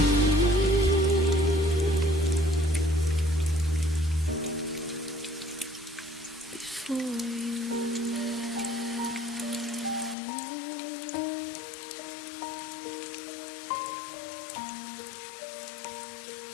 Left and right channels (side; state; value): right; drops out; at 10.2 s